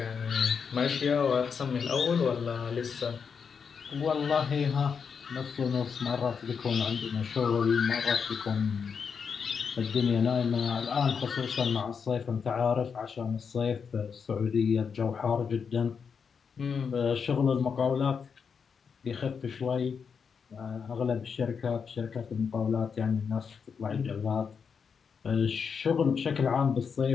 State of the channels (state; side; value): quieter; right; 6.2 dB